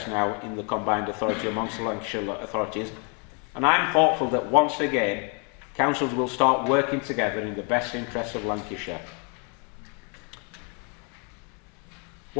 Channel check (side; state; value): right; quieter; 36.2 dB